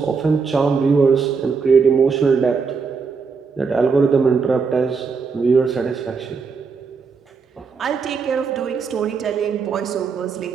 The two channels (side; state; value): left; quieter; 5.2 dB